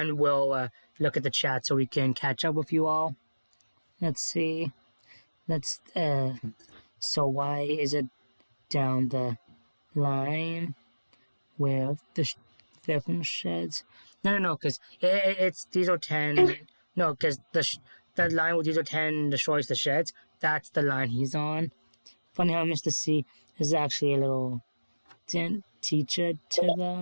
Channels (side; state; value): both; inverted; correlation -1.00